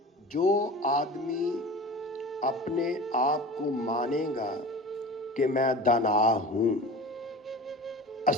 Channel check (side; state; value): both; normal; correlation 0.36